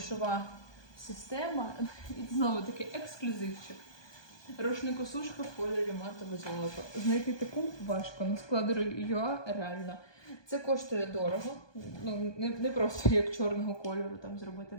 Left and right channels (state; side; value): late; right; 1.2 ms